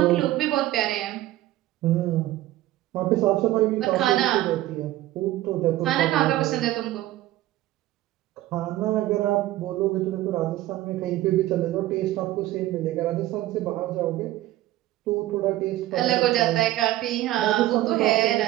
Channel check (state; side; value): quieter; left; 15.5 dB